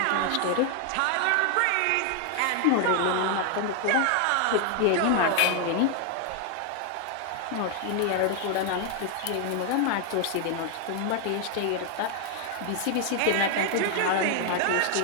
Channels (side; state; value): both; different; correlation 0.00